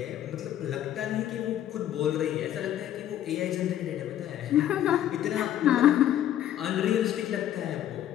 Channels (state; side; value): quieter; right; 11.5 dB